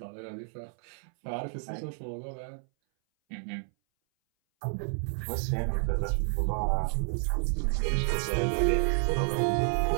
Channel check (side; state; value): left; silent; 58 dB below the other